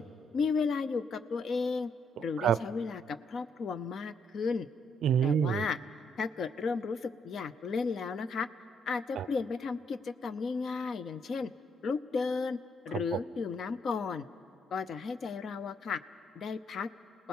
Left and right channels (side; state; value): both; normal; correlation 0.73